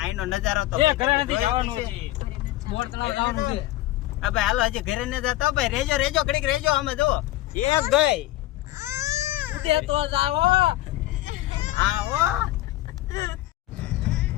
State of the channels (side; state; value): right; quieter; 16.3 dB